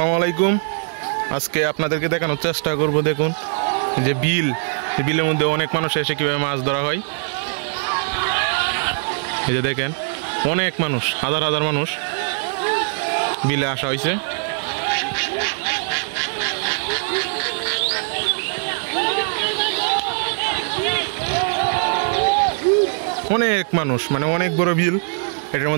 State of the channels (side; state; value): left; silent; 62 dB below the other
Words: আলাইকুম। আজকে আপনাদেরকে দেখানোর চেষ্টা করব। দেখুন যে বিলের মধ্যে অনেক মানুষ এসে কিভাবে মাছ ধরা হয়। এই যে দেখেন অনেক মানুষ, হাজার হাজার মানুষ বিলে আসা হয়েছে। অনেক মানুষ, মানে অনেক বড় বিল। এটার